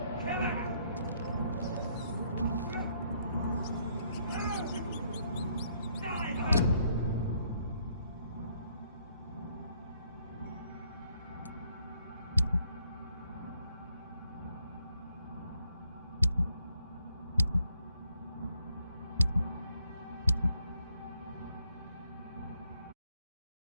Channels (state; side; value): inverted; both; correlation -0.70